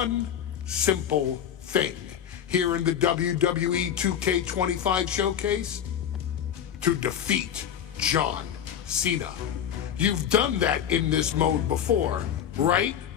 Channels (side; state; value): right; quieter; 9.2 dB